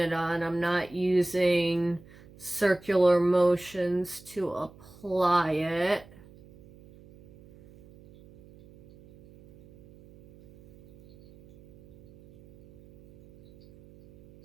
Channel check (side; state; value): right; noise; hum, 24 dB below the sound